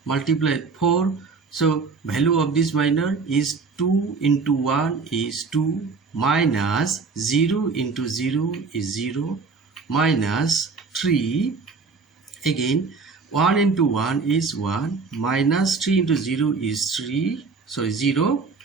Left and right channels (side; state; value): left; quieter; 4.6 dB